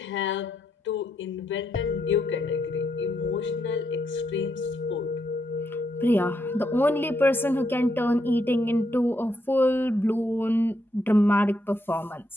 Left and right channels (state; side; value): normal; both; correlation 0.79